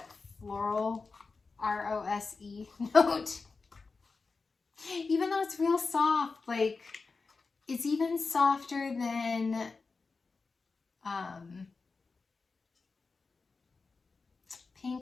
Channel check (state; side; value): quieter; right; 4.3 dB